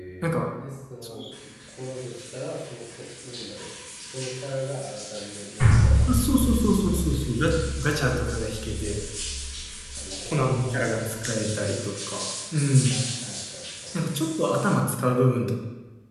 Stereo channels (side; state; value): both; identical; correlation 1.00